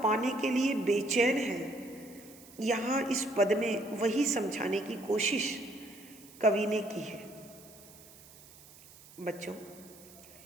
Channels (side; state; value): right; noise; hiss, 21 dB below the sound